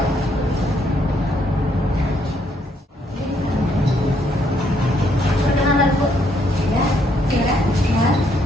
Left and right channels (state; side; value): normal; both; correlation 0.71